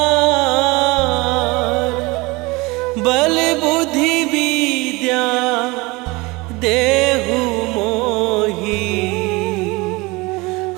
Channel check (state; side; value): quieter; left; 24.1 dB